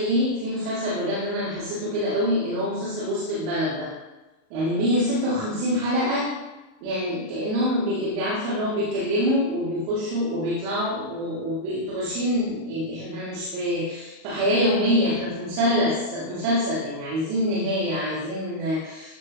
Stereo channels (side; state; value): left; late; 38 ms